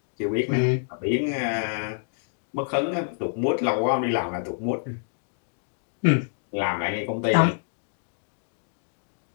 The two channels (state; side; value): silent; right; digital silence